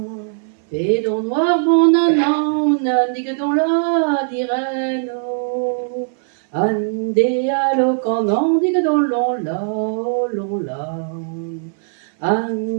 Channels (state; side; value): silent; left; 60 dB below the other